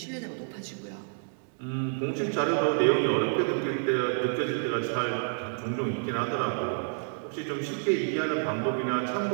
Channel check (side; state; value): left; silent; digital silence